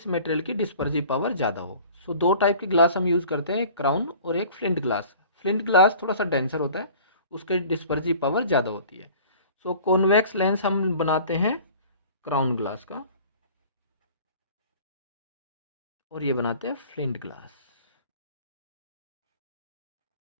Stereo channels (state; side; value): inverted; both; correlation -0.46